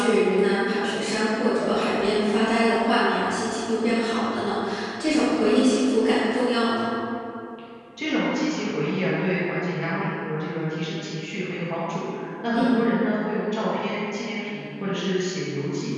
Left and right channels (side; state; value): both; identical; correlation 1.00